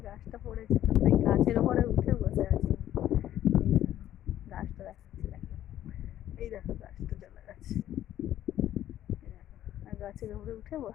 গাছটা পড়েছে, তো সেই গাছের উপরে উঠে বসে আছে। গাছটা দেখাচ্ছে, দেখো এই দেখো গাছটা চলে গেছে, আর গাছের উপরে উঠে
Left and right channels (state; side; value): quieter; right; 12.2 dB